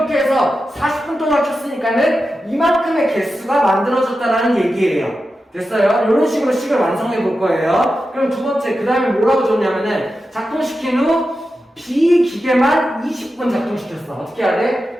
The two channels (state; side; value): normal; both; correlation 0.91